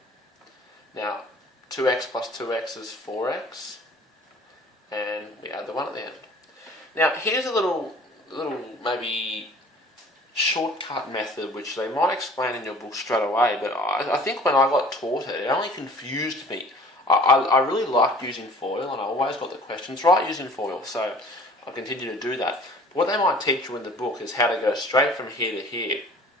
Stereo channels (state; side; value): normal; both; correlation 0.49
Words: Now, 2x plus 2x is 4x. And we add the 1 at the end. Now, here's a little maybe shortcut method which they might explain in your book straight away, but I think when I got taught it, it only confused me. I really liked using FOIL, and I always got the questions right using FOIL, so I continue to do that. But what they might teach you in the book is how to go straight from here to here.